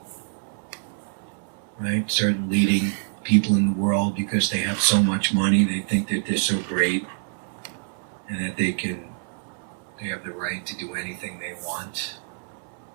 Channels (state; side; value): silent; left; 61 dB below the other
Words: Right? Certain leading people in the world, because they have so much money, they think that they're so great and that they have the right to do anything they want.